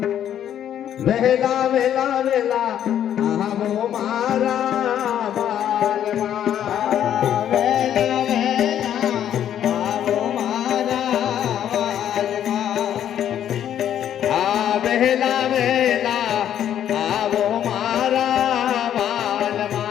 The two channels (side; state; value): right; quieter; 10.3 dB